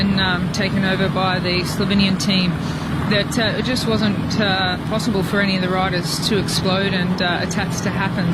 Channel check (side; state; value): both; identical; correlation 1.00